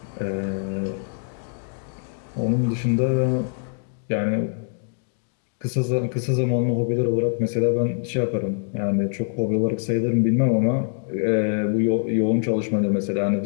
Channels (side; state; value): right; silent; digital silence